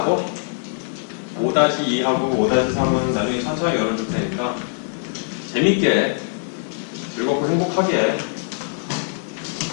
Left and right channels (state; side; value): silent; right; 58 dB below the other